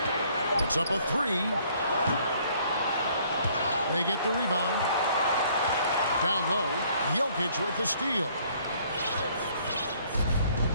Puts up a 3. They get the rebound. Down low, Jokic with the steal.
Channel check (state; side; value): inverted; both; correlation -0.62